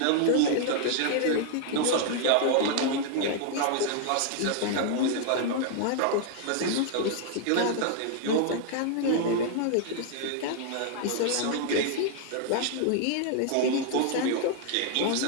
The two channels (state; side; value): different; both; correlation 0.00